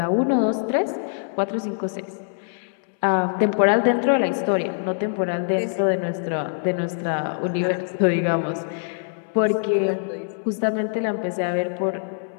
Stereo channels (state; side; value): silent; right; 63 dB below the other